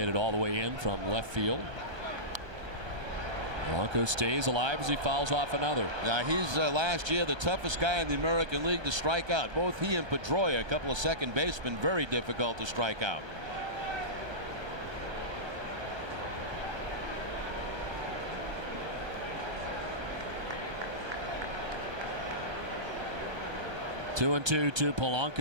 it all the way in from left field. Polanco stays alive as he fouls off another. Now he's last year the toughest guy in the American League to strike out. Both he and Pedroia, a couple of second basemen, very difficult to strike out. 2-2 to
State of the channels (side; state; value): left; late; 1.3 ms